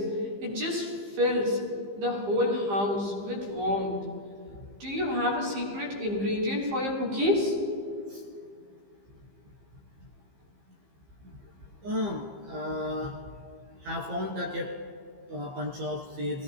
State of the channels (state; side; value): late; left; 15 ms